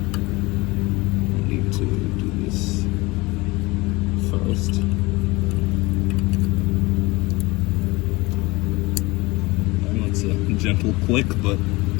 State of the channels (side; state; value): right; quieter; 22.8 dB